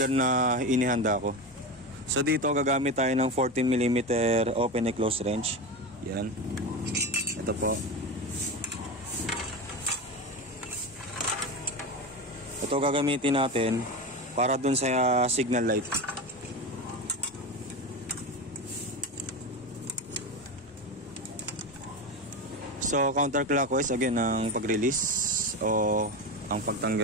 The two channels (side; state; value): both; normal; correlation 0.21